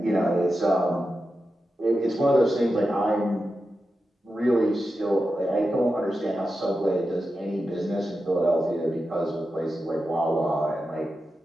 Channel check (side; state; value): both; normal; correlation 0.90